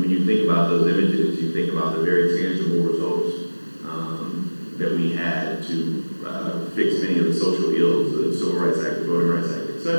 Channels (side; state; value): both; inverted; correlation -1.00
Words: you think about those images, you think about the very tangible results that we had to fix many of the social ills, the Civil Rights Act, the Voting Rights Act,